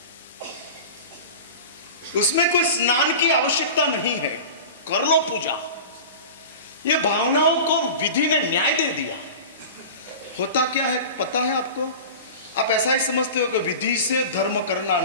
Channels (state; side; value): inverted; both; correlation -0.34